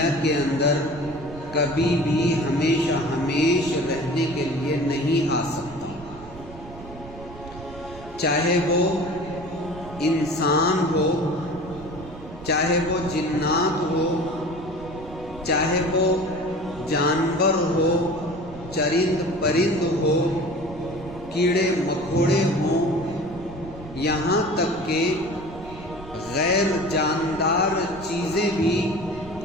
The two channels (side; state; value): right; noise; rumble, 16 dB below the sound